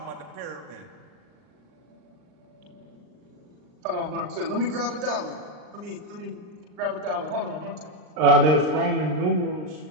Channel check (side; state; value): left; late; 39 ms